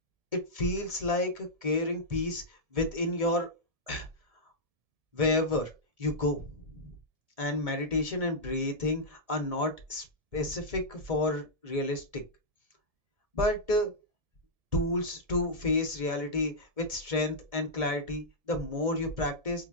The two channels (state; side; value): late; left; 1.7 ms